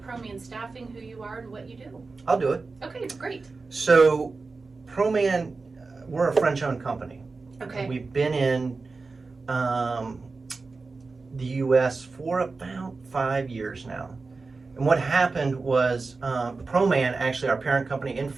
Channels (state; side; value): quieter; left; 4.0 dB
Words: Proman Staffing, who you are and what you do. I'll do it. Okay, great. So, Proman, we're a French-owned company. Okay. We've been in the U.S. for about 5 years now. And what happened was Proman, actually our parent company in